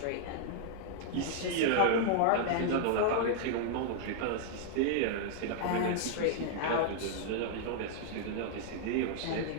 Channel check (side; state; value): both; different; correlation -0.01